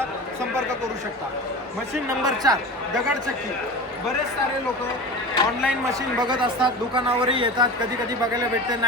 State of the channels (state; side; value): normal; both; correlation 0.31